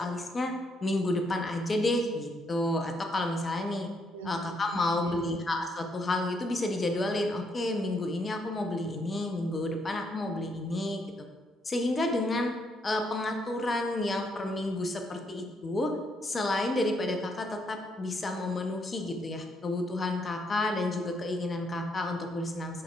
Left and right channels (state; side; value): normal; both; correlation 0.74